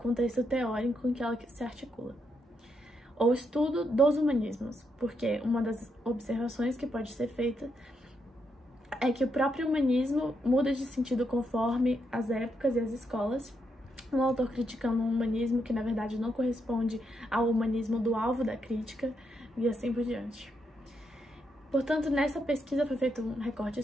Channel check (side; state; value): both; normal; correlation 0.80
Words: teórico em que ela se articula. Ou estudo dos humanismos, porque uma das observações que pode ser feita é que o próprio humanismo muda de sentido conforme as épocas e as escolas. Um autor criticando um humanismo que, na verdade, não corresponde ao humanismo do alvo da crítica, e assim por diante. Portanto, nessa pesquisa foi feito um recorte